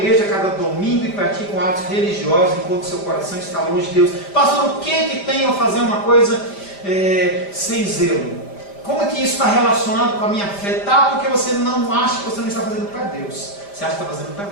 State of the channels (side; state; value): right; late; 5.0 ms